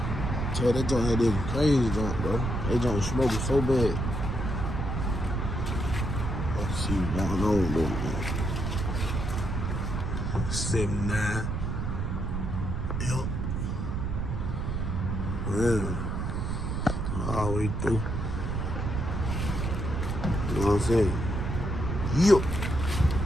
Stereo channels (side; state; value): right; noise; rumble, 2 dB below the sound